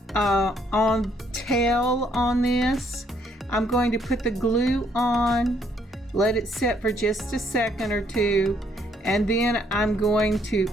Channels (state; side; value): normal; both; correlation 0.69